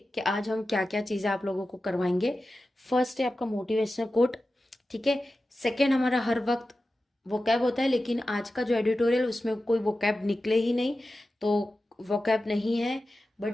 कि आज हम क्या क्या चीजें आप लोगों को करवाएंगे। फर्स्ट है आपका मोटिवेशनल कोट, ठीक है। सेकेंड, हमारा हर वक्त वोकैब होता है, लेकिन आज का जो एडिटोरियल उसमें कोई वोकैब निकले ही नहीं, तो वोकैब नहीं है।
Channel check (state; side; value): normal; both; correlation 0.93